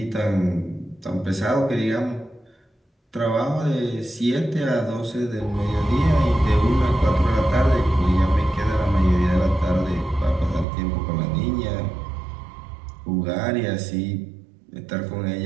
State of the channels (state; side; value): drops out; left; at 10.7 s